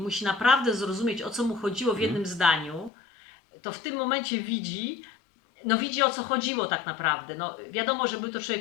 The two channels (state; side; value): drops out; right; at 2.9 s